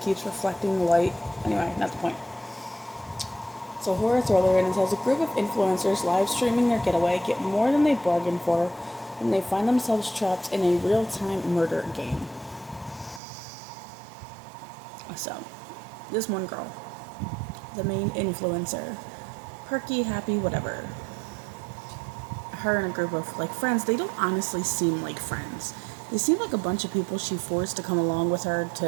keeps reflecting the light. Anyway, not the point. It's a horror thriller, and it says a group of influencers live streaming their getaway get more than they bargained for when they find themselves trapped in a real-time murder game. So, this one girl, the main influencer, perky, happy, whatever. Her and a group of friends, they don't honestly seem like friends. They seem like a bunch of people she forced to come along with her to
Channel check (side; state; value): left; drops out; at 13.2 s